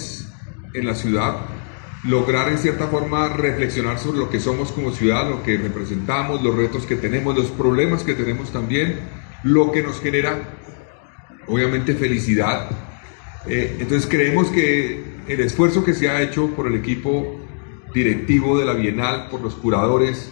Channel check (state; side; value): silent; right; digital silence